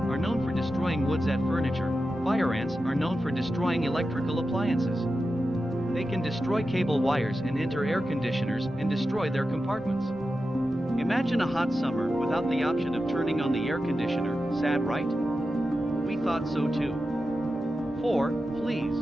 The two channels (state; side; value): normal; both; correlation 0.91